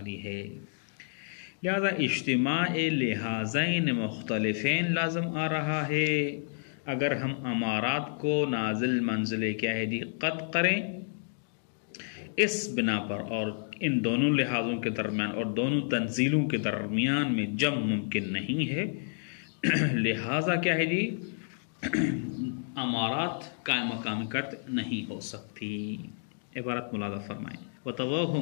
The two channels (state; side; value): silent; right; digital silence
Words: ہے۔ لہذا اجتماع لحاظین مختلفین لازم آ رہا ہے اگر ہم امارات کو نازل منزل کیا ہے جی؟ قطع کریں اس بنا پر، اور ان دونوں لحاظوں کے درمیان اور دونوں تنزیلوں کے درمیان میں جمع ممکن نہیں ہے، لہذا کیا ہے جی؟ امارات قائم مقام قطع نہیں ہو سکتی۔ عبارت ملاحظہ فرمائیں۔